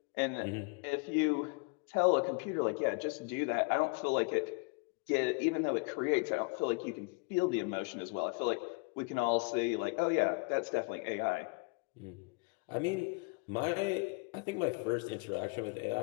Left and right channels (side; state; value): right; quieter; 31.2 dB